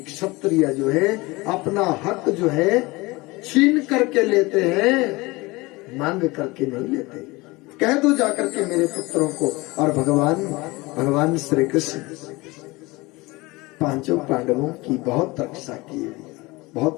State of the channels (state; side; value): quieter; right; 22.8 dB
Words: जो है अपना हक जो है छीन करके लेते हैं, मांग करके नहीं लेते। कह दो जाकर के मेरे पुत्रों को। और भगवान श्री कृष्ण 5 पांडवों की बहुत रक्षा की, बहुत